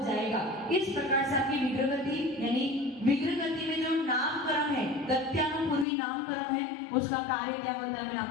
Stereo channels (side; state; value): right; drops out; at 5.9 s